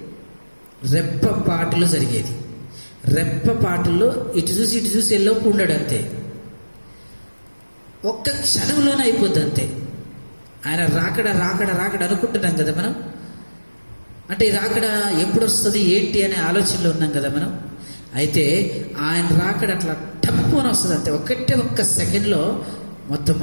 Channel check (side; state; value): both; inverted; correlation -1.00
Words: రెప్పపాటులో జరిగేది. రెప్పపాటులో ఇటు చూసి ఎల్లోపు ఉండడు, అంతే. ఒక్క క్షణంలోనే అయిపోద్ది, అంతే. ఆయన రాకడ రాకడ రాకడ అనుకుంటున్నాం కదా మనం. అంటే ఈ రాకడ ఎప్పుడు వస్తుంది ఏంటి అనే ఆలోచనలో ఉన్నాం కదా మనం. అయితే ఆయన రాకడ అట్లా టప్పుని వస్తుంది, అంతే. ఒక్క సెకండ్లో మొత్తం